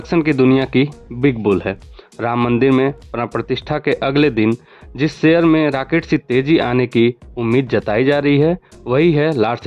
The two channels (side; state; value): both; identical; correlation 1.00